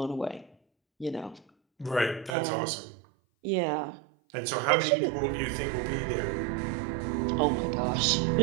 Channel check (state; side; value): drops out; left; at 2.3 s